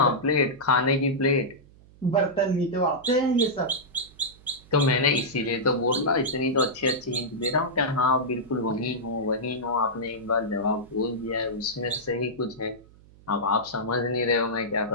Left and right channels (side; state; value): right; noise; hum, 25 dB below the sound